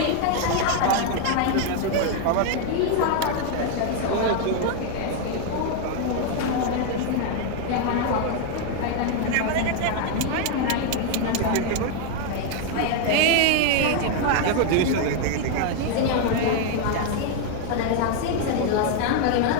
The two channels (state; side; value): different; both; correlation 0.00